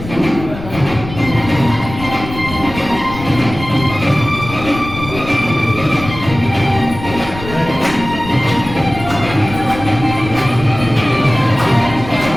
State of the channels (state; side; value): noise; left; rumble, 11 dB below the sound